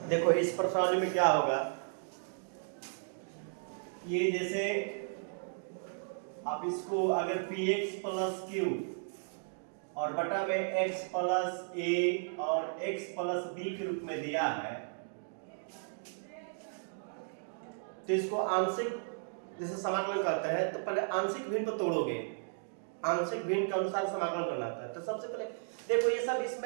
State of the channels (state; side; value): silent; left; digital silence